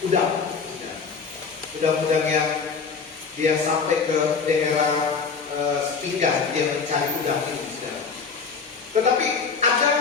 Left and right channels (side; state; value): right; quieter; 5.3 dB